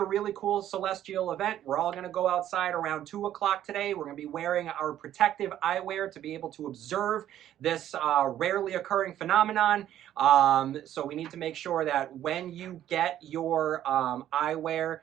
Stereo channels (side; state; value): left; quieter; 11.7 dB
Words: really cool celestial event. We're all going to go outside around 2 o'clock today. We're going to be wearing our protective eyewear to be able to observe this rarely occurring phenomenon. So we need to make sure that when you get your eyewear